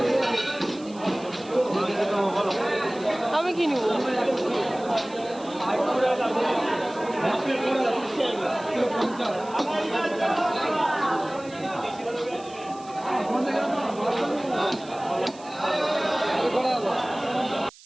আমি কি নিব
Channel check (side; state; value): right; noise; hiss, 22 dB below the sound